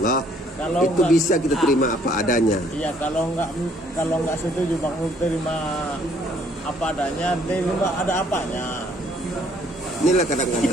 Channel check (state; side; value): normal; both; correlation 0.63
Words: Kalau itu bisa kita terima apa adanya. Iya, kalau nggak setuju Bang terima apa adanya, terima ada apanya. Inilah